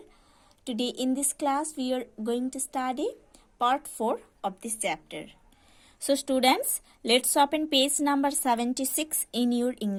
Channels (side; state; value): both; identical; correlation 1.00